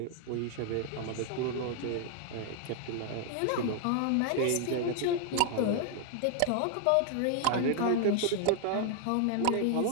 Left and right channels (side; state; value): both; different; correlation 0.00